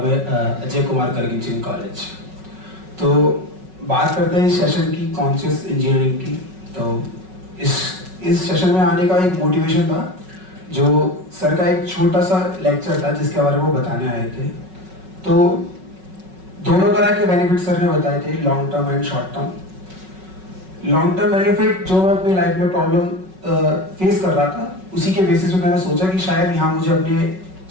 Kumar Karginching College. तो बात करते हैं इस session की conscious engineering की। तो इस सेशन में आने का एक मोटिवेशन था, जो सर का एक छोटा सा लेक्चर था जिसके बारे में वो बताने आए थे। तो दोनों तरह के बेनिफिट सर ने बताए थे, long term and short term. Long term benefit जो मैं अपनी लाइफ में प्रॉब्लम फेस कर रहा था, उसी के बेसिस पे मैंने सोचा कि शायद यहाँ मुझे अपने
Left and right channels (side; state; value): left; late; 5.4 ms